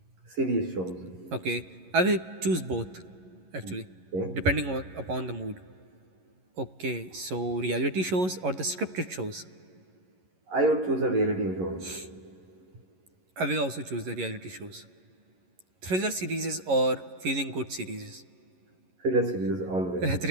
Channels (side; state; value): left; late; 11 ms